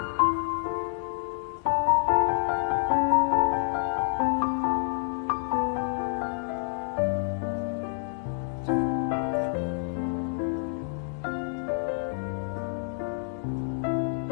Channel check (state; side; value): silent; right; digital silence